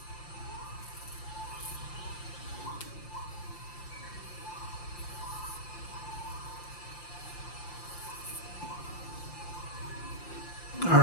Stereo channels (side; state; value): right; late; 5.8 ms